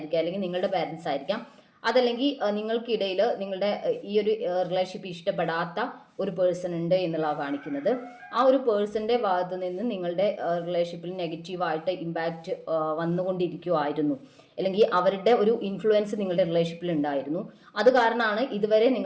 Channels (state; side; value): identical; both; correlation 1.00